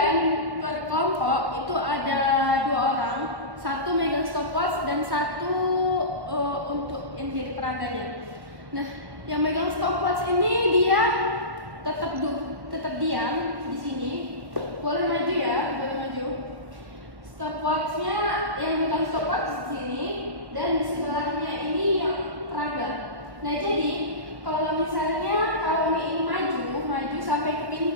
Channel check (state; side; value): late; left; 1.2 ms